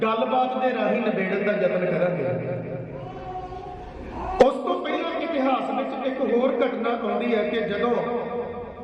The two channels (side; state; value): both; identical; correlation 1.00